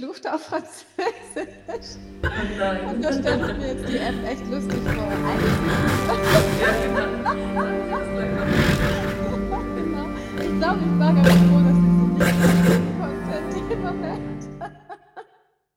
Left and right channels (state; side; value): identical; both; correlation 1.00